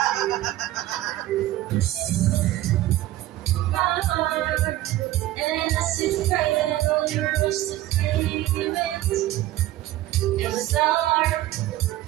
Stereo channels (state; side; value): quieter; left; 15.2 dB